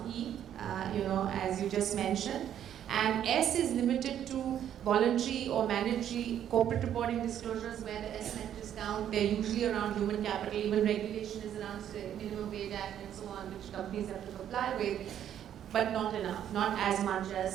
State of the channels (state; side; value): quieter; left; 10.2 dB